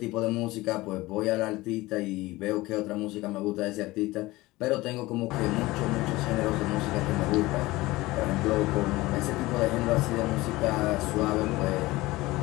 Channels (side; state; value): right; quieter; 19.7 dB